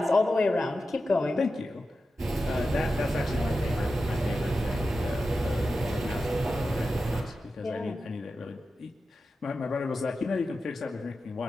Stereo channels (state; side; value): normal; both; correlation 0.91